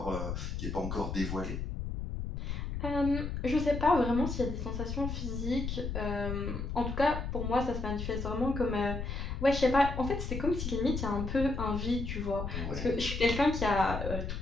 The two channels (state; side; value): noise; left; rumble, 4 dB below the sound